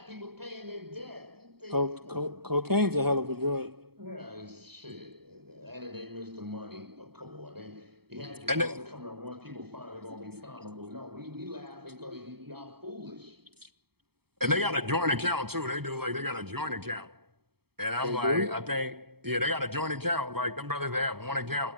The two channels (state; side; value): late; left; 0.96 ms